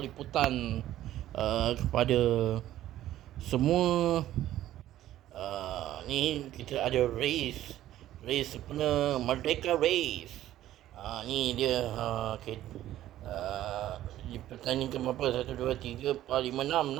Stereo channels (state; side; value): quieter; left; 13.4 dB